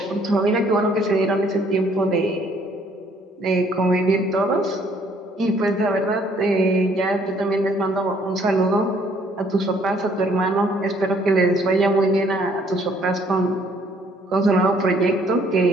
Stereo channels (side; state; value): both; normal; correlation 0.63